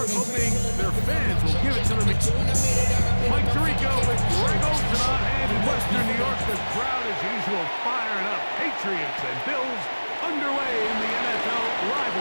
hoping their fans will give it to them. Mike Tirico with Greg Olsen on hand in Western New York. The crowd, as usual, firing up. Patriots and Bills underway in the NFL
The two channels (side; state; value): both; inverted; correlation -1.00